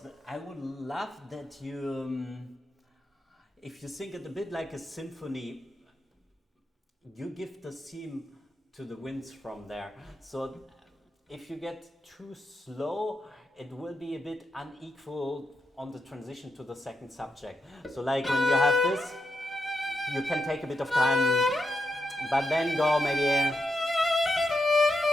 I would love that you, if you think it a bit like a symphony, you give the theme to the winds from there. So if you get too slow, it will be a bit unequal on the transition to the second subject. So like when you have this, you can take a bit of time, but then go maybe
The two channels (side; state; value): both; normal; correlation 0.84